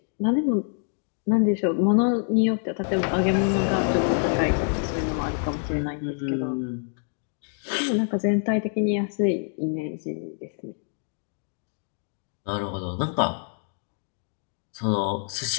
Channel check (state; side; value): silent; right; 61 dB below the other